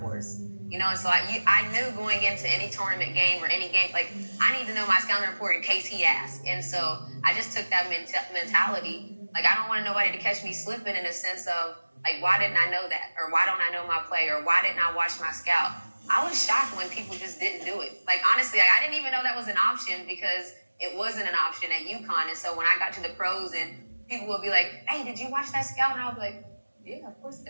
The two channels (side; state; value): both; inverted; correlation -1.00